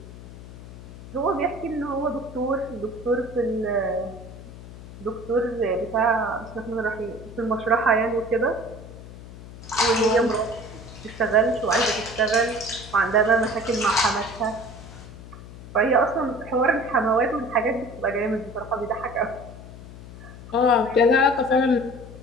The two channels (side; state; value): left; noise; hum, 15 dB below the sound